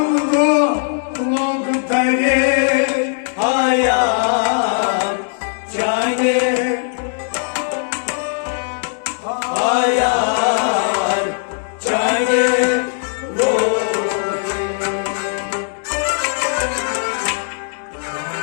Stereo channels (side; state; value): right; silent; digital silence